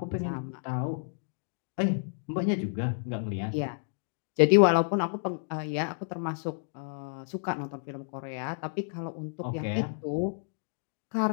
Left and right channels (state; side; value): silent; right; digital silence